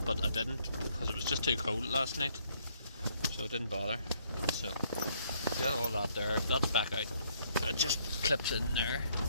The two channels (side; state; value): both; inverted; correlation -0.68